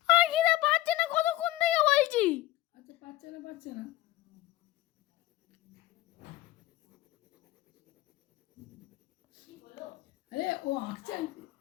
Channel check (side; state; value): right; quieter; 16.5 dB